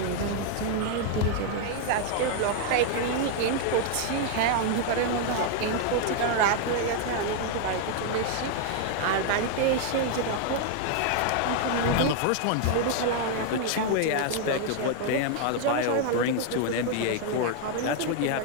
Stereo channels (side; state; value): both; different; correlation 0.00